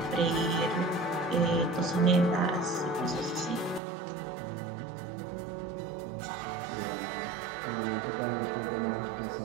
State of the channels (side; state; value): left; drops out; at 3.8 s